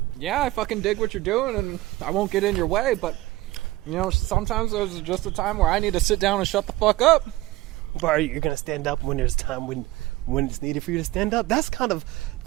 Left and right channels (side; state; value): left; quieter; 18.1 dB